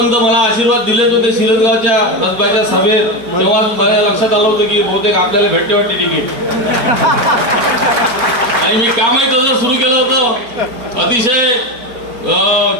तर मला आशीर्वाद दिलेच होते शिरसगावच्या रसबाच्या सभेत. तेव्हा माझ्या लक्षात आलं होतं की बहुतेक आपल्याला भेटते वाटते तिकीट. आणि मी कामही तसं सुरू केलं होतं. अतिशय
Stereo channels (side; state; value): left; late; 4.3 ms